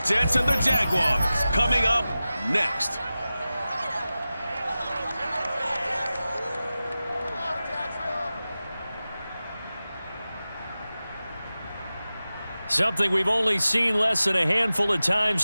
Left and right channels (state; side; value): inverted; both; correlation -0.95